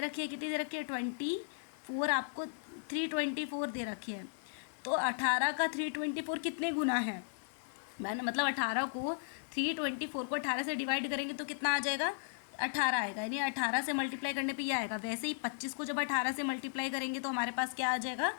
है, कितनी दे रखी है, 24, आपको 324 दे रखी है। तो 18 का 324 कितने गुना है, मैंने मतलब 18 को 324 को 18 से डिवाइड करेंगे तो कितना आ जाएगा, 18 आएगा। यानी 18 से मल्टीप्लाई करने पे ये आएगा। वैसे ही 25 को जब 18 से मल्टीप्लाई करेंगे तो हमारे पास क्या आ जाएगा,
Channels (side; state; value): right; silent; digital silence